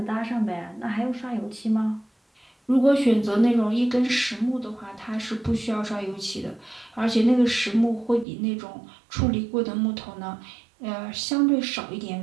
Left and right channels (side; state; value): left; drops out; at 8.2 s